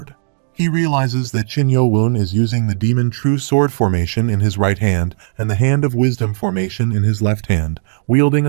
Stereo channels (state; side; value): silent; left; digital silence